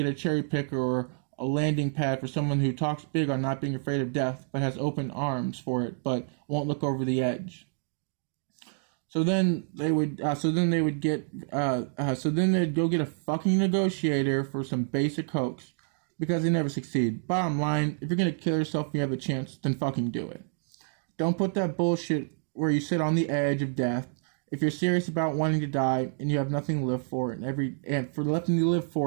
a cherry picker or a landing pad for someone who talks big on not being afraid of death but has open arms for it but won't look over the edge. So then they would. So then they would get. So then they'd go get a fucking negotiator for some basic hoax, because they never succeed. Bottom line: if you're gonna kill yourself and you have a chance, then fucking do it. Don't put that bullshit where you sit on the edge of death. If you're serious about wanting to die and you have nothing to live for and for nothing to live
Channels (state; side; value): silent; left; digital silence